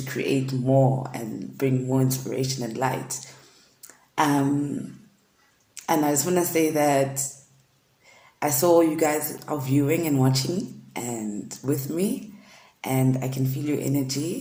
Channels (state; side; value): identical; both; correlation 1.00